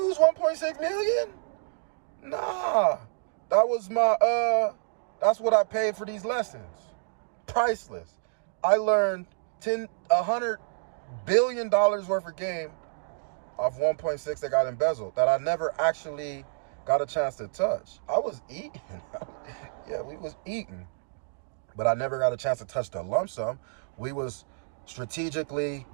1.6 million. Nah. That was that's what I paid for these lessons. Priceless. I learned $100 billion worth of game off 1.6 that got embezzled that I never actually got a chance to touch. I was eating. Yeah, we was eating. But I never got a chance to touch the lump sum. We was strategically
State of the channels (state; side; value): silent; left; digital silence